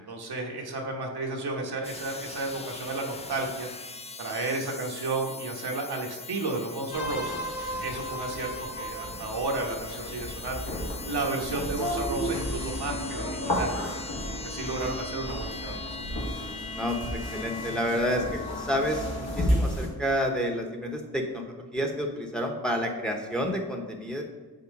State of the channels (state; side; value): normal; both; correlation 0.28